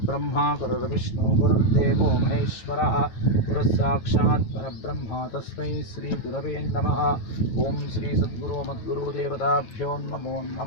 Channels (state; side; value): late; right; 9.2 ms